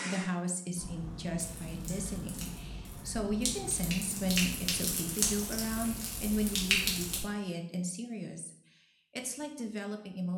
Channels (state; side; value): identical; both; correlation 1.00